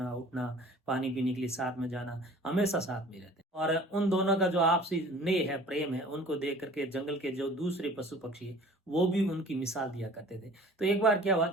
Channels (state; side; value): normal; both; correlation 0.47